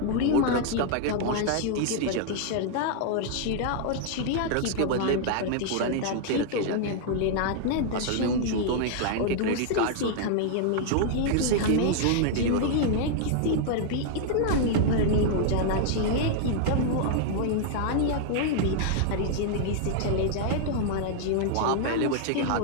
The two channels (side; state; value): both; different; correlation -0.01